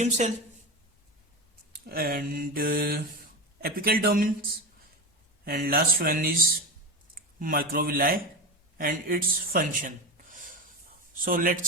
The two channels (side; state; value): both; normal; correlation 0.19